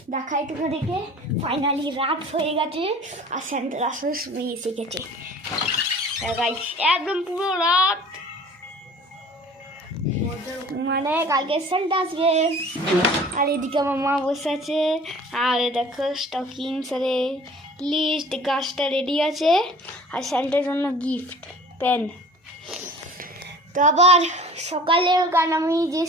দেখাই তোমাদেরকে, ফাইনালি রাত হয়ে গেছে আর সেন্টার আসার সময় এসে গেছে। গাইস, একদম পুরো রাত, মানে কালকে সেন্টা আসবে। আর এদিকে আমার মা বসে আছে। আর দেখো স্টকিংস, আরে লিস্ট, গাছটা রেডি আছে। আর সেন্টার জন্য গিফট পেন। তো আবার সকালে, কারণ আমি যে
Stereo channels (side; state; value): both; normal; correlation 0.46